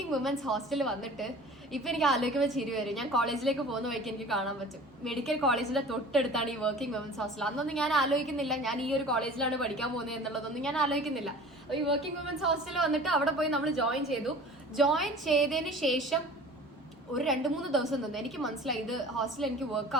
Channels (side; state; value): both; normal; correlation 0.43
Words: വുമൻസ് ഹോസ്റ്റലിൽ വന്നിട്ട് ഇപ്പൊ എനിക്ക് ആലോചിക്കുമ്പോൾ ചിരി വരും. ഞാൻ കോളേജിലേക്ക് പോകുന്ന വഴിക്ക് എനിക്ക് കാണാൻ പറ്റും. മെഡിക്കൽ കോളേജിന്റെ തൊട്ടടുത്താണ് ഈ വർക്കിംഗ് വുമൻസ് ഹോസ്റ്റൽ. അന്നൊന്നും ഞാൻ ആലോചിക്കുന്നില്ല ഞാൻ ഈ ഒരു കോളേജിലാണ് പഠിക്കാൻ പോകുന്നത് എന്നുള്ളതൊന്നും ഞാൻ ആലോചിക്കുന്നില്ല. ഈ വർക്കിംഗ് വുമൻസ് ഹോസ്റ്റലിൽ വന്നിട്ട് അവിടെ പോയി നമ്മൾ ജോയിൻ ചെയ്തു. ജോയിൻ ചെയ്തതിന് ശേഷം ഒരു 2-3 ദിവസം നിന്ന് എനിക്ക് മനസ്സിലായി ഇത് ഹോസ്റ്റലിൽ എനിക്ക് വർക്ക്